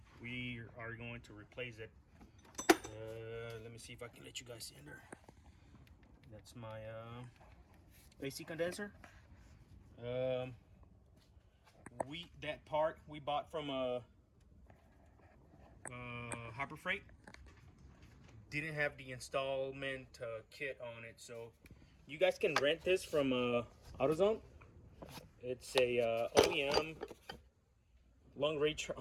we are going to replace it. Let me see if I can let you guys see in there. That's my AC condenser. That part we bought from Harbor Freight. Didn't have the installment kit on it, so you guys can rent this from AutoZone. It's a OEM long range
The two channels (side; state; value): both; identical; correlation 1.00